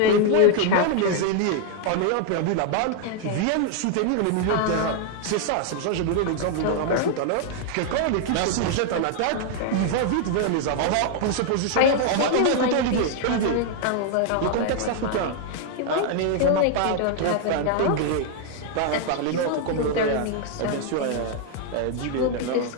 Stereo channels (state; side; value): different; both; correlation 0.00